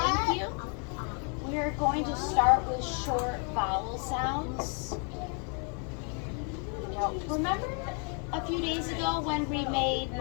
you. We are going to start with short vowel sounds. Now, remember a few days ago when we made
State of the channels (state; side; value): quieter; right; 39.2 dB